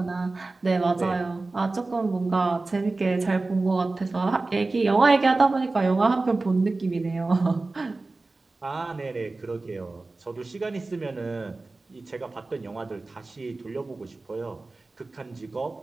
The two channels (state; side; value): quieter; left; 3.4 dB